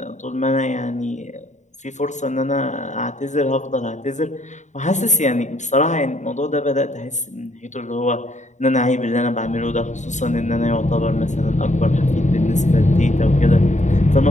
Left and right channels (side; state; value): right; late; 0.35 ms